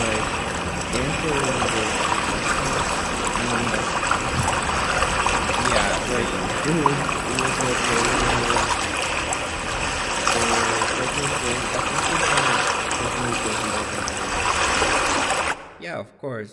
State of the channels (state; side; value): identical; both; correlation 1.00